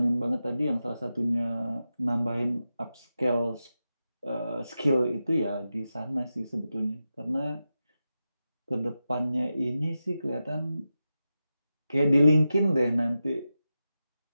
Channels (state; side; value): inverted; both; correlation -0.91